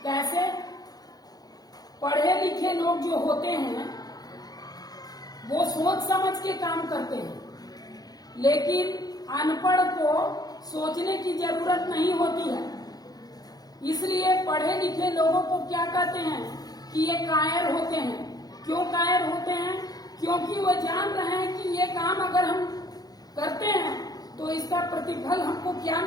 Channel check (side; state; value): right; late; 0.19 ms